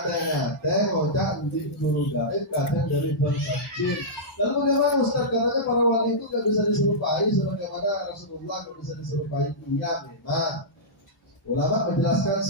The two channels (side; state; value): both; normal; correlation -0.13